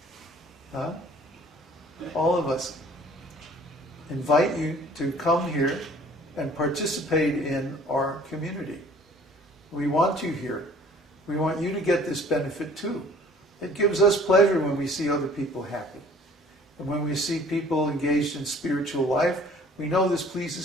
Huh? All of us invite you to come here and participate in our community. We want you here. We want you to get this benefit too. It gives us pleasure when we see other people happy. And when we see people engaged in spiritual life, we know this pleases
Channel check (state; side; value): normal; both; correlation 0.52